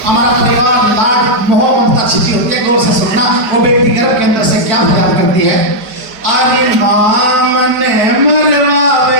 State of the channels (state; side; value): late; left; 5.0 ms